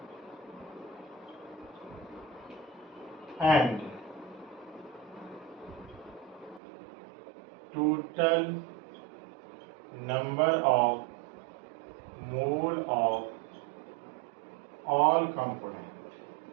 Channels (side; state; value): left; drops out; at 6.6 s